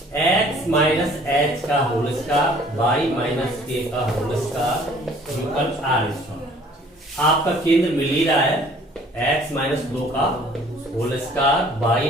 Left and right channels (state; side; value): normal; both; correlation 0.55